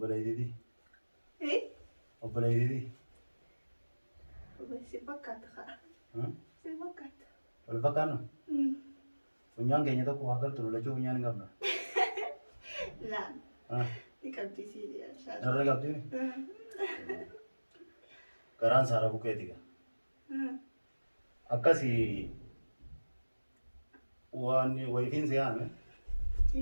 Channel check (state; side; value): inverted; both; correlation -1.00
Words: إيه Obboleeyyitii. بس بكت خا بكت Wal fakkaannu? Funyaan keenya tokko waa galtu lolachuu funyaan hin qabna. لا نكبتي سيدي إن شاء الله Darra qabdii? Garaan saara bukeeti gaa. Akkasii waan wayifiin si yaame